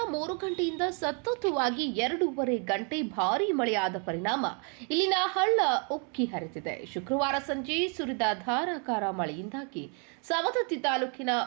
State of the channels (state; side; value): quieter; left; 38.7 dB